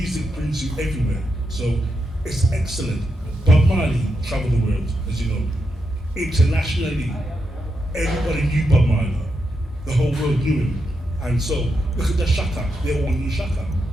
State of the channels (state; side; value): normal; both; correlation 0.84